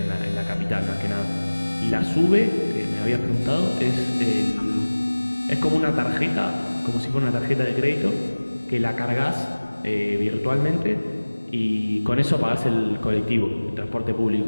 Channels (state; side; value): inverted; both; correlation -1.00